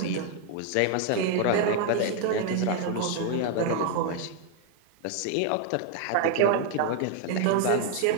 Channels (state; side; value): different; both; correlation 0.00